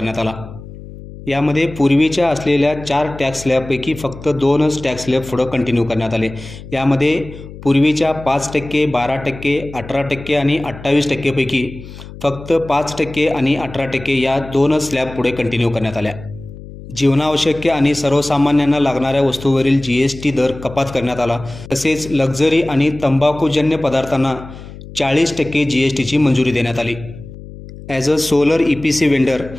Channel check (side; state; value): left; noise; hum, 15 dB below the sound